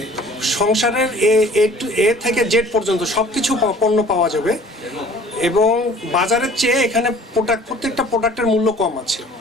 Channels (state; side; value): normal; both; correlation 0.50